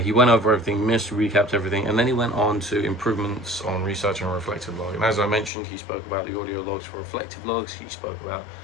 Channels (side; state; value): right; drops out; at 5.5 s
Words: went over everything, missed, recapped everything, and then he went on to improvements on research and reflective log. And as I mentioned, he spoke about the audio logs for reflective logs. He spoke about